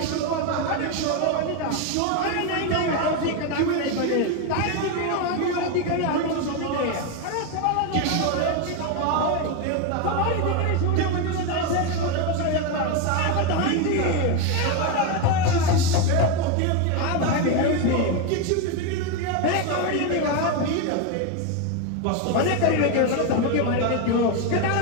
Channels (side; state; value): both; different; correlation 0.02